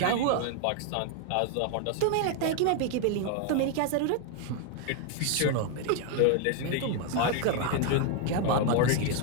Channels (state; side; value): different; both; correlation 0.00